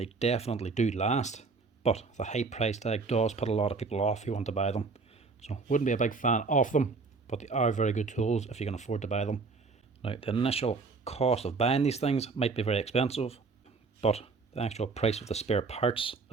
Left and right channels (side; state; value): left; quieter; 4.3 dB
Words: definitely do last. But the high price tag does put a lot of people off who want to buy them. So wouldn't be a big fan of them, but they are very good tools if you can afford to buy them. Now the initial cost of buying these things might be very expensive, but the actual price of the spare parts